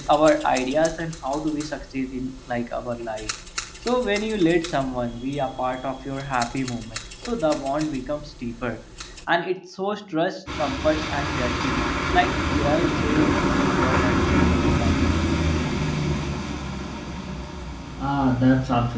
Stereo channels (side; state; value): both; identical; correlation 1.00